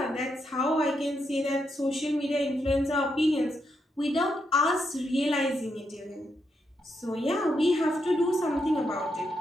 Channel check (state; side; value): normal; both; correlation 0.81